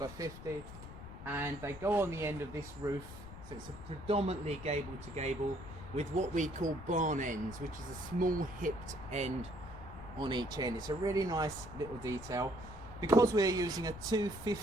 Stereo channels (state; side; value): noise; left; rumble, 13 dB below the sound